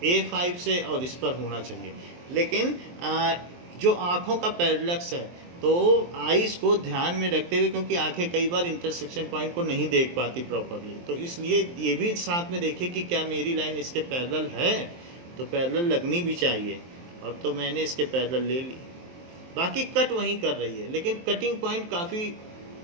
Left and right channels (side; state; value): left; late; 23 ms